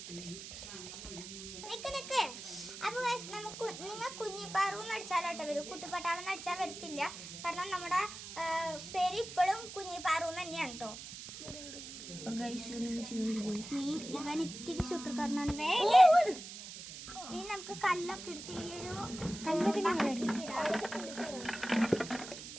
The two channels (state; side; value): noise; right; hiss, 11 dB below the sound